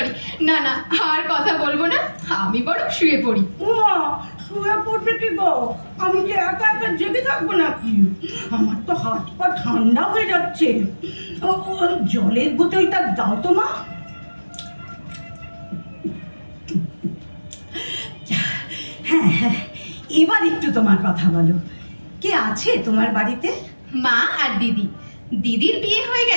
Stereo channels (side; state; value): both; inverted; correlation -1.00